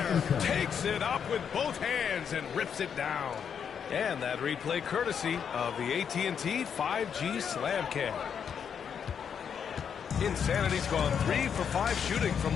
Takes it up with both hands and rips it down. And that replay courtesy of the AT&T 5G Slam Cam. Insanity's gone 3 for 5 shooting from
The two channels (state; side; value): quieter; right; 7.5 dB